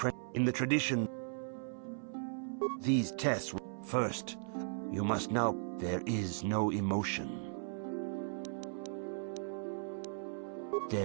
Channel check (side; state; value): left; silent; 53 dB below the other